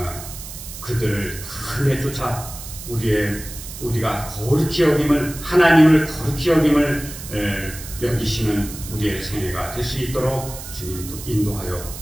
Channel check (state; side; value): noise; right; hiss, 12 dB below the sound